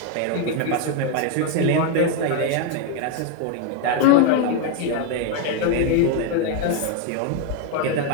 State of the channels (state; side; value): different; both; correlation 0.01